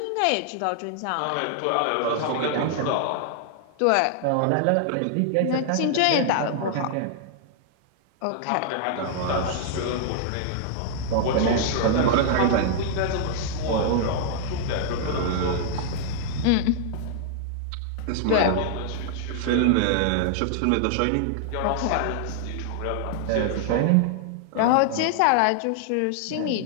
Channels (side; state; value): both; different; correlation 0.00